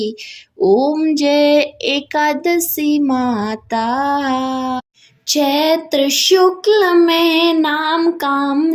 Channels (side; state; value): both; identical; correlation 1.00